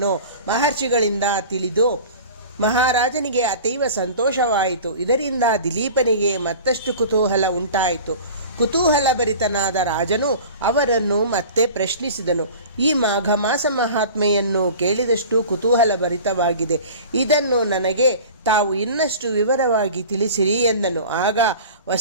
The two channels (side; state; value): both; inverted; correlation -0.39